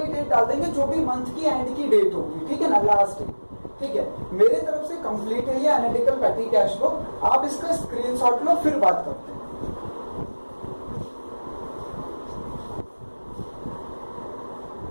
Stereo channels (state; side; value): inverted; both; correlation -1.00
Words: डेट डाल देंगे जो भी मंथ की एंड की डेट होगी, ठीक है ना, लास्ट। ठीक है, मेरे तरफ से कंप्लीट है ये एनालिटिकल पेटी कैश बुक, आप इसका स्क्रीनशॉट लो फिर बात करो।